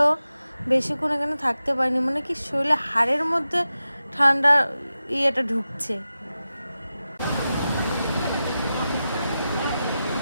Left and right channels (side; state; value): both; inverted; correlation -0.92